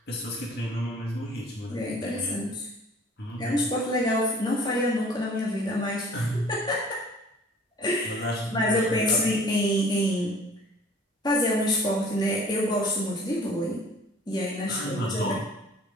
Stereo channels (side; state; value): both; normal; correlation 0.51